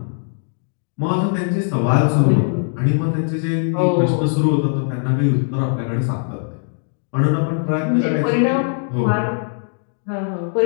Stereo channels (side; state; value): right; silent; digital silence